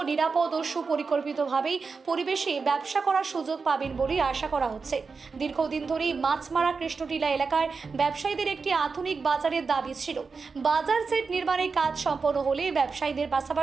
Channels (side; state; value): left; quieter; 4.8 dB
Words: নিরাপদ ও সুপরিকল্পিতভাবেই পরিবেশে ব্যবসা করার সুযোগ পাবেন বলে আশা করা হচ্ছে। দীর্ঘদিন ধরেই মাছমারা কৃষ্ণটিলা এলাকার ব্যবসায়ীদের একটি আধুনিক বাজারের দাবি ছিল। বাজার সেট নির্মাণের কাজ সম্পন্ন হলে ব্যবসায়ীদের